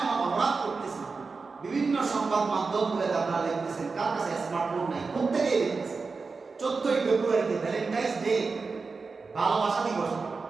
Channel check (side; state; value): left; quieter; 4.4 dB